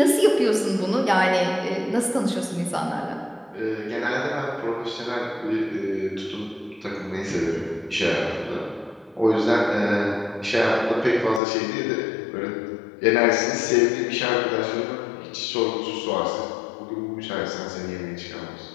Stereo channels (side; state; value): right; drops out; at 11.4 s